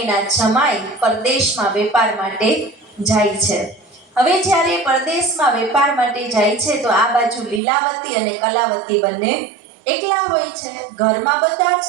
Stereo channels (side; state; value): left; drops out; at 7.6 s